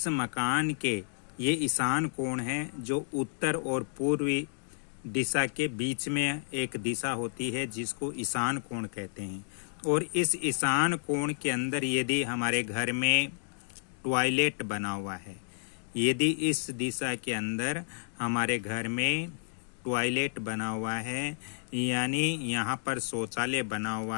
मकान के ये ईशान कोण है जो उत्तर और पूर्वी दिशा के बीच में एक दिशा होती है जिसको ईशान कोण कहते हैं। और इस ईशान कोण के अंदर यदि हमारे घर में टॉयलेट बना हुआ है, यदि इस दिशा के अंदर हमारे घर में टॉयलेट बना हुआ है, यानी यहाँ पर शौचालय बना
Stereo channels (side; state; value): right; silent; digital silence